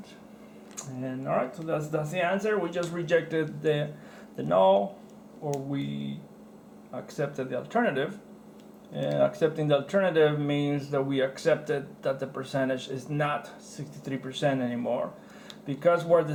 And all right, so that's the answer. We just rejected the null, or we accepted the alternative. And accepting the alternative means that we accepted that the percentage is not 63% anymore, because where the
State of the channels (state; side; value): identical; both; correlation 1.00